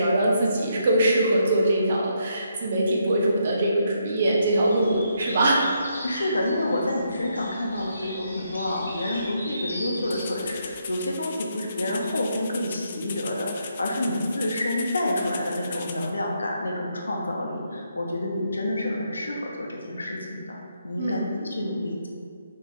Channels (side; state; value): both; inverted; correlation -0.76